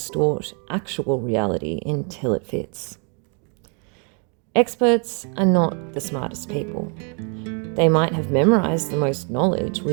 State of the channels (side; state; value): left; quieter; 37.6 dB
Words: actual reality until it fits. Experts are not the smartest people. They might have memorized the most knowledge